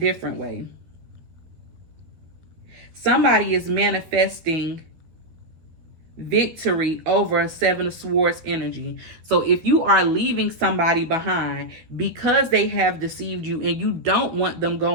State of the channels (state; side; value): late; left; 13 ms